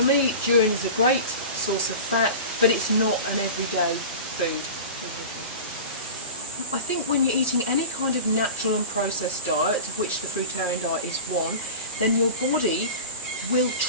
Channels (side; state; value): both; inverted; correlation -0.32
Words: me, durian is a great source of fat, but it's not an everyday food. I think when you're eating any kind of natural and processed diet, of which the fruitarian diet is one, then your body will